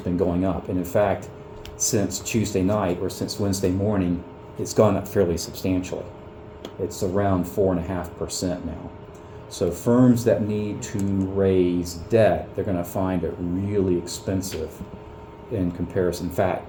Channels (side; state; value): both; identical; correlation 1.00